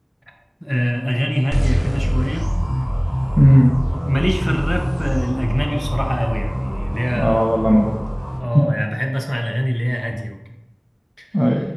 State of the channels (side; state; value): both; identical; correlation 1.00